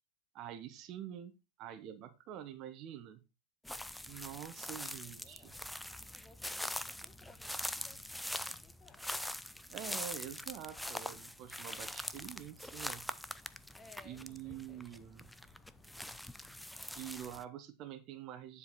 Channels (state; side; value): normal; both; correlation 0.74